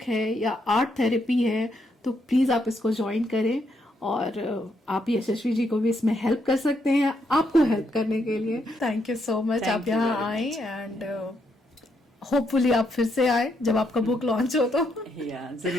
है या आर्ट थेरेपी है तो प्लीज आप इसको ज्वाइन करें, और आप यशस्वी जी को भी इसमें हेल्प कर सकते हैं, आपको हेल्प करने के लिए। Thank you so much, Thank आप you यहाँ very आए, एंड होपफुली आप फिर से आए जब आपका बुक लॉन्च हो तो। Yeah,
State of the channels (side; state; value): both; normal; correlation 0.77